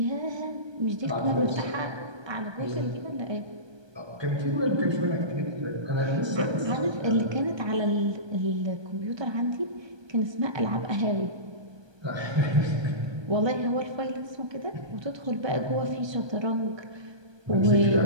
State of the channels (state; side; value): late; left; 1.2 ms